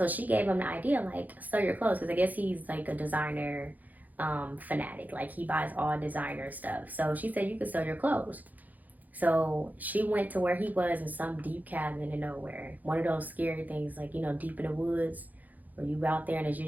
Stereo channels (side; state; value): left; late; 0.081 ms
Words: she gave him the idea, like, sell your clothes. Because I guess he's like a designer fanatic. Like he buys all designer stuff. So she said, you could sell your clothes. So she went to where he was in some deep cabin in nowhere. One of those scary things, like, deep in the woods, where you out there and it's